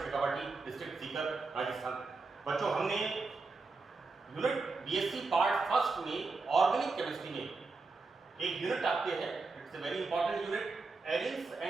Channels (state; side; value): quieter; left; 3.9 dB